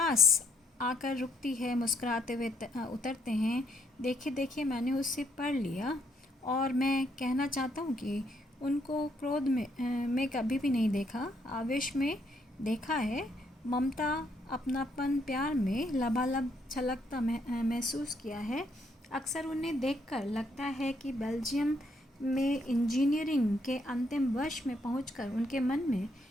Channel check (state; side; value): normal; both; correlation 0.72